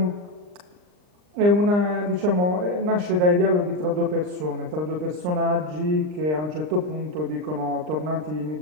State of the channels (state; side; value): late; left; 39 ms